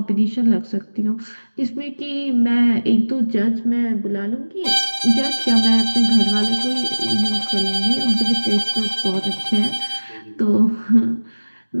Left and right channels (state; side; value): inverted; both; correlation -1.00